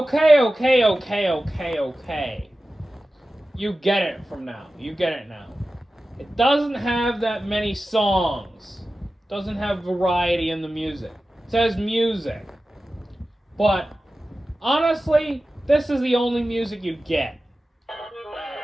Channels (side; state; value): both; normal; correlation 0.95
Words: You get it from now. You get it now. It doesn't have that many songs. It doesn't have variety in the music. It says music. But honestly, this is the only music you get.